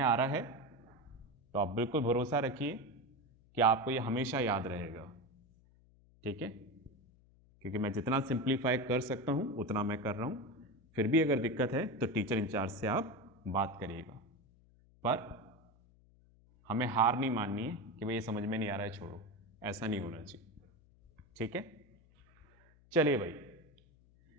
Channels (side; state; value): left; noise; hum, 28 dB below the sound